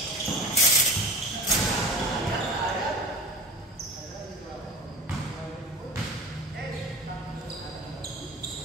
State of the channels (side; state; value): both; normal; correlation 0.35